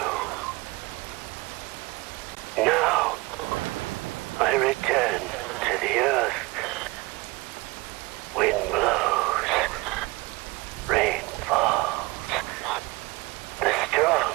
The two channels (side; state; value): left; quieter; 23.1 dB